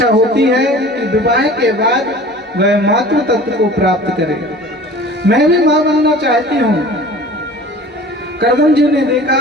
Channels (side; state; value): both; normal; correlation 0.43